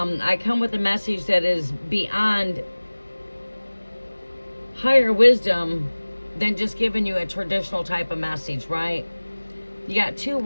come with a message that is beyond higher wisdom than just giving you a traditional type of message, right? You got 2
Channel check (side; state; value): both; inverted; correlation -1.00